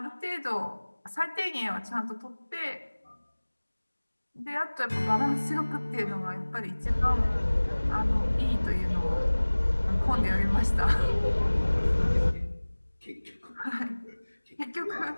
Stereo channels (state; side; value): inverted; both; correlation -1.00